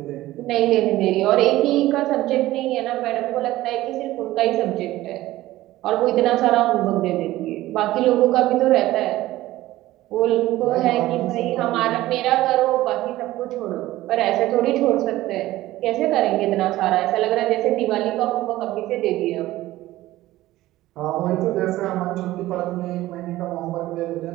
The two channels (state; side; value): quieter; left; 16.3 dB